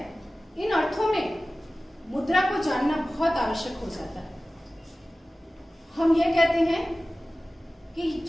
इन अर्थों में मुद्रा को जानना बहुत आवश्यक हो जाता है। हम यह कहते हैं कि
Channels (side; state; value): both; normal; correlation 0.97